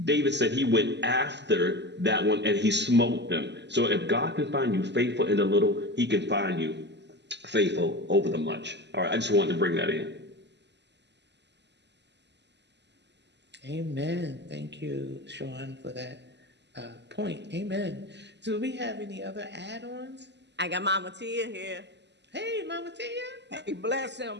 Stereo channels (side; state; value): left; late; 0.51 ms